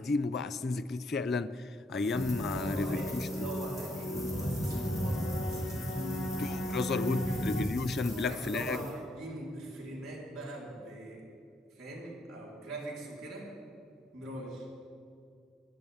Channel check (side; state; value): both; normal; correlation 0.73